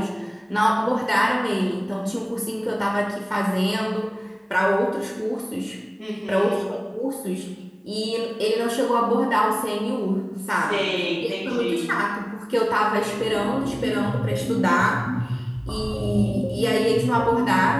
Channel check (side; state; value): both; identical; correlation 1.00